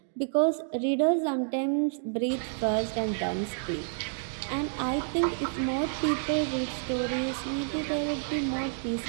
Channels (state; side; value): silent; left; digital silence